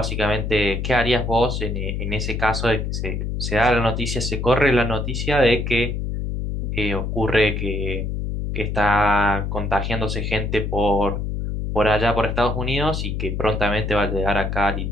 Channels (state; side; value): noise; left; hum, 2 dB below the sound